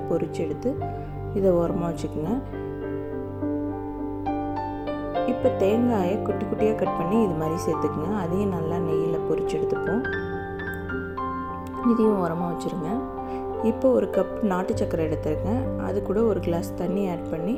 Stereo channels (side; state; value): both; identical; correlation 1.00